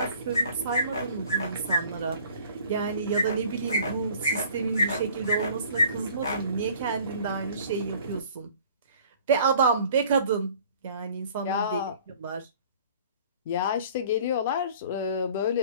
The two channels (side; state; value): both; inverted; correlation -0.51